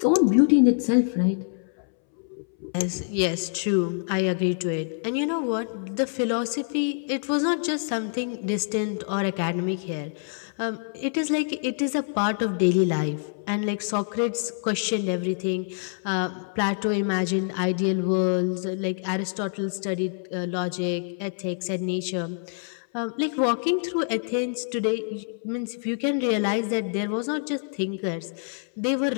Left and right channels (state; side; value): silent; right; 61 dB below the other